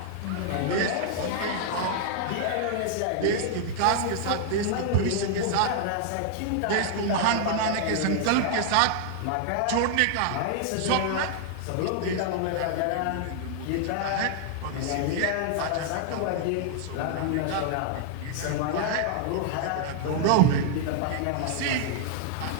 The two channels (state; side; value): different; both; correlation -0.01